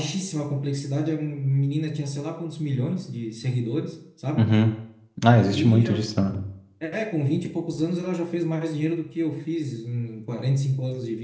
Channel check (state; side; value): identical; both; correlation 1.00